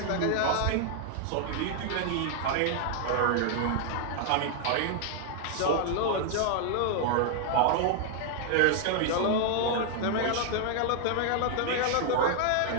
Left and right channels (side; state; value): both; different; correlation 0.00